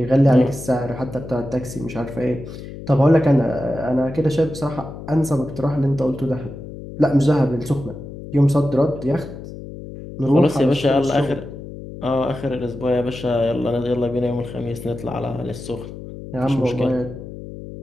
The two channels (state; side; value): noise; left; hum, 12 dB below the sound